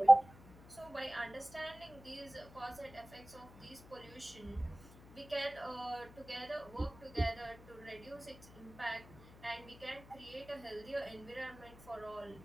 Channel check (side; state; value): left; noise; hum, 20 dB below the sound